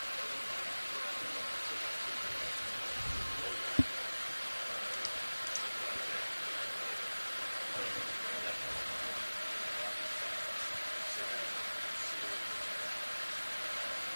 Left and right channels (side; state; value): both; inverted; correlation -1.00